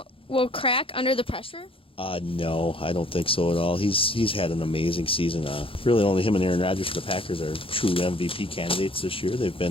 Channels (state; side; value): late; right; 0.26 ms